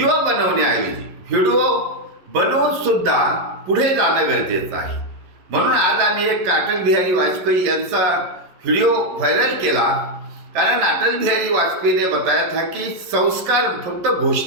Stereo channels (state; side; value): late; left; 11 ms